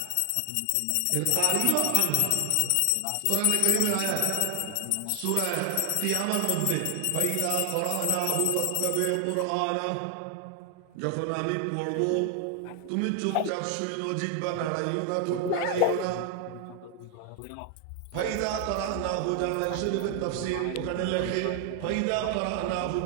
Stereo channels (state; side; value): different; both; correlation 0.00